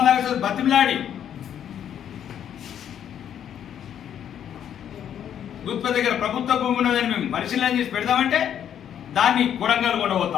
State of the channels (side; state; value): right; quieter; 9.5 dB